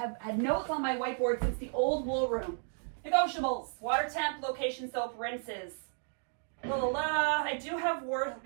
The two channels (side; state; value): left; silent; 56 dB below the other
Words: had notes on my whiteboard since the old wool room. Negotiables, water temp, location soap, rinses. La la la. I do have